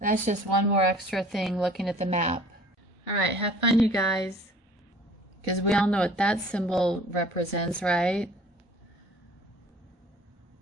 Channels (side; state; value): both; normal; correlation 0.49